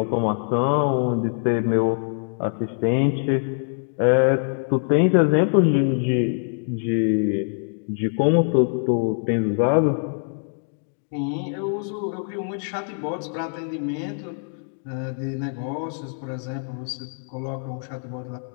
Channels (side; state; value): right; silent; digital silence